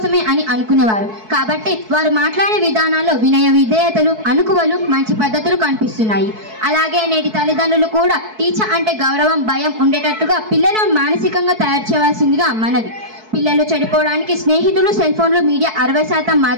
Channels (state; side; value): late; left; 4.6 ms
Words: అని అనుకునేవారు. కాబట్టి వారు మాట్లాడే విధానాల్లో వినయ విధేయతలు, అనుకువలు, మంచి పద్ధతులు కనిపిస్తున్నాయి. అలాగే నేటి తల్లిదండ్రులు కూడా టీచర్ అంటే గౌరవం, భయం ఉండేటట్టుగా పిల్లలను మానసికంగా తయారు చేయవలసిందిగా మనవి. పిల్లలు చెడిపోవడానికి స్నేహితులు, సెల్ ఫోన్లు, మీడియా 60%